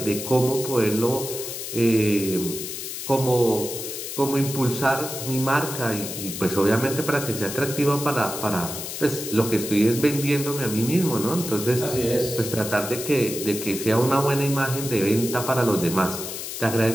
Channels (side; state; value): left; noise; hiss, 7 dB below the sound